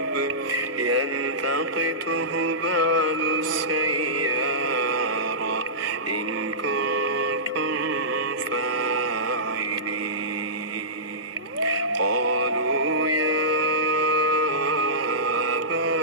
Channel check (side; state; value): both; normal; correlation -0.18